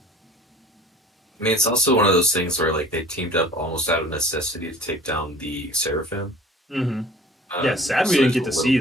I mean, it's also one of those things where like they teamed up almost out of necessity to take down the Seraphim. Mm-hmm. Yeah, sad we So didn't there's a get to little see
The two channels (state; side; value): normal; both; correlation 0.46